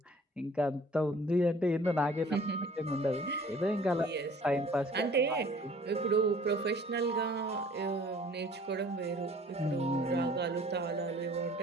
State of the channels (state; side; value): normal; both; correlation 0.52